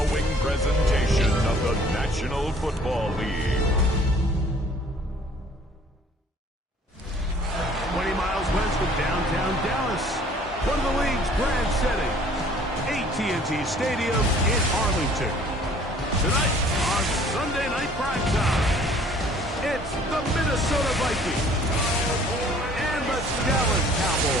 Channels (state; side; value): normal; both; correlation 0.55